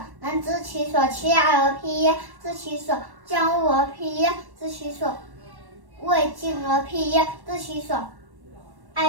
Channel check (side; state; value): left; late; 1.1 ms